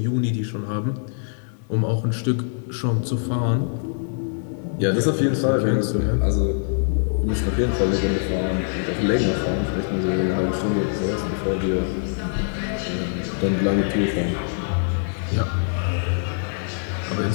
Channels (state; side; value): silent; right; digital silence